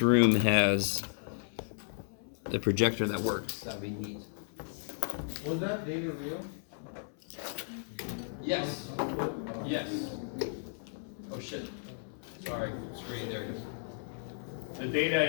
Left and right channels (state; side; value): silent; right; 55 dB below the other